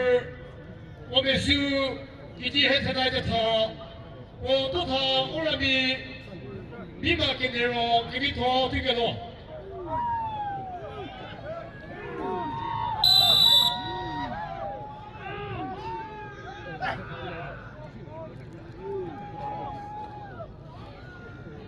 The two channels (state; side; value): identical; both; correlation 1.00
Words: o mesu, iti hetenai de ta, o tota orami, viva que nero, que vito, tigero.